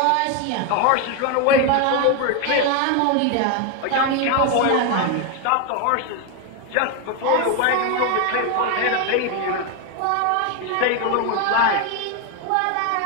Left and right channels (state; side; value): different; both; correlation 0.01